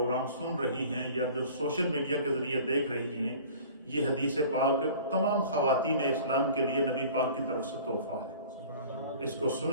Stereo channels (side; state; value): both; inverted; correlation -0.45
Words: سن رہی ہیں یا جو سوشل میڈیا کے ذریعے دیکھ رہی ہیں، یہ حدیث پاک تمام خواتین اسلام کے لیے نبی پاک کی طرف سے تحفہ ہے. اس کو